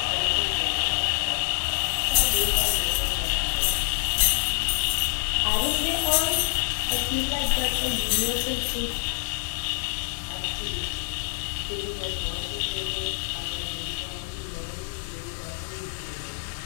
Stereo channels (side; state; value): right; silent; digital silence